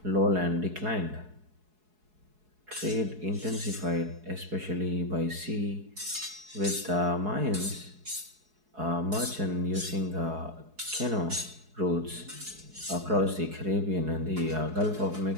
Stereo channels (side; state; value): left; late; 4.7 ms